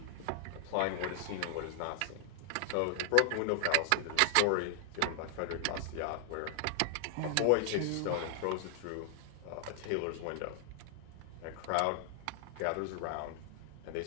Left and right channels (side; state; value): both; different; correlation 0.00